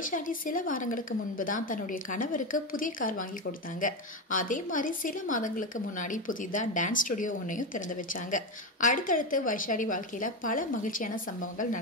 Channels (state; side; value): normal; both; correlation 0.14